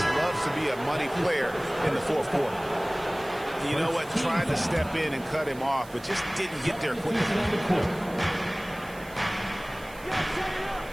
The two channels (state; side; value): noise; right; hiss, 21 dB below the sound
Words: loves to be a money player in the fourth quarter. You know what? Tried to step in and cut him off, but just didn't get there quick enough.